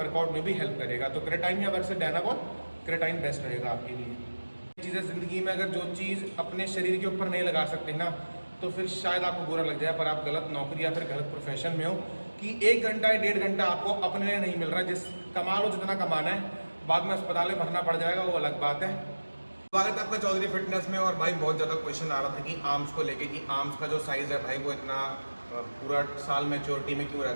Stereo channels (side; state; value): both; inverted; correlation -1.00